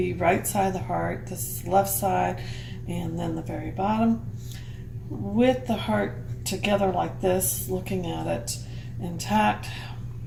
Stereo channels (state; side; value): identical; both; correlation 1.00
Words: right side of the heart, this is the left side, and then the very bottom. With the heart together like this, looking at it intact,